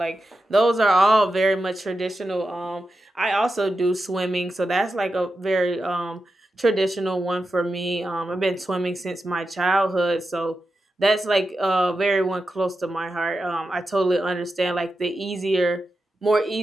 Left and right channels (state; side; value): normal; both; correlation 0.90